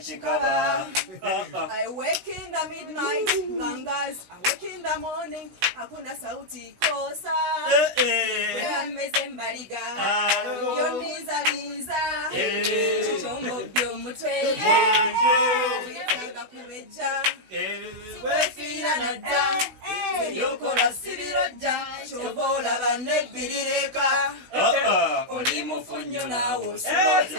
I wake in the midnight bangas I wake in the morning hakuna sauti kosa weyameze mbaliga yondinzaliza kitombo by'omutwe wetaaga kubejja wefiira nadda ebyokola sibirojja kyova olaba nebbirireka oli mufunyo naawe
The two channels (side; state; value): left; late; 16 ms